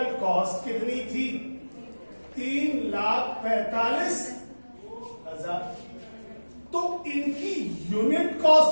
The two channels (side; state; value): both; inverted; correlation -1.00